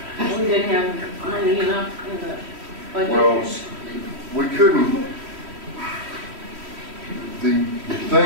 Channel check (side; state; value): left; late; 3.1 ms